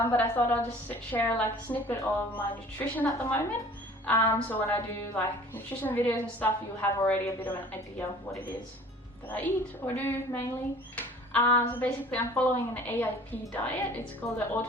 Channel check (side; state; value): both; normal; correlation 0.48